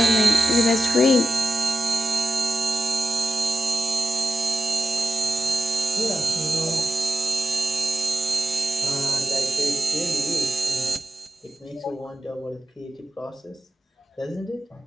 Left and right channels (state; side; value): normal; both; correlation 0.90